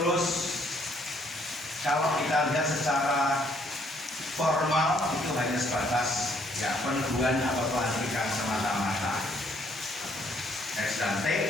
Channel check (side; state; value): both; normal; correlation 0.67